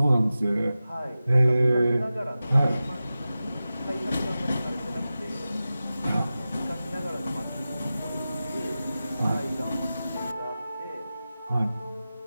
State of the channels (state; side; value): inverted; both; correlation -0.94